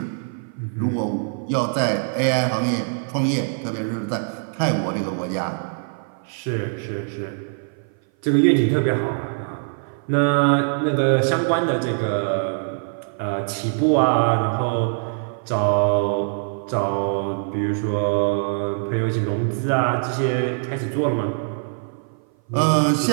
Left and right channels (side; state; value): left; silent; 57 dB below the other